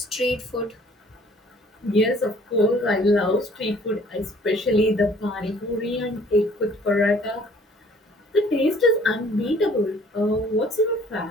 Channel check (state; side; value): normal; both; correlation 0.56